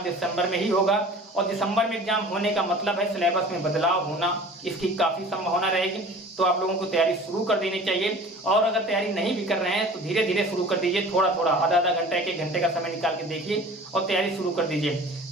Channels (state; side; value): normal; both; correlation 0.43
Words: दिसंबर में ही होगा। और दिसंबर में एग्जाम होने का मतलब है सिलेबस में बदलाव होना, इसकी काफी संभावना रहेगी। तो आप लोगों को तैयारी शुरू कर देनी चाहिए। और अगर तैयारी नहीं भी कर रहे हैं तो धीरे धीरे शुरू कर दीजिए, थोड़ा थोड़ा, आधा घंटा, 1 घंटे का समय निकाल के देखिए और तैयारी शुरू कर दीजिए।